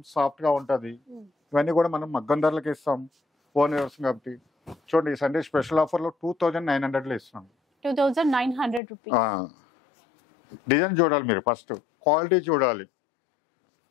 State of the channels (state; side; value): drops out; right; at 8.8 s